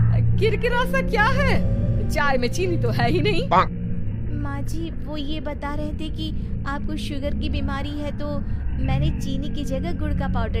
किरकिरा सा क्या है? चाय में चीनी तो है ही नहीं। माँ जी वो ये बता रहे थे कि आपको शुगर की बीमारी है, तो मैंने चीनी की जगह गुड़ का पाउडर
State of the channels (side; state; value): both; identical; correlation 1.00